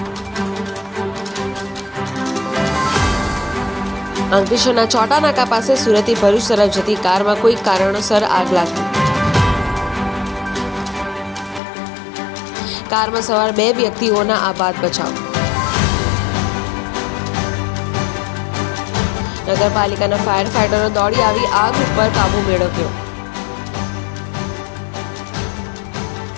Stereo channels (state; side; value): drops out; right; at 11.6 s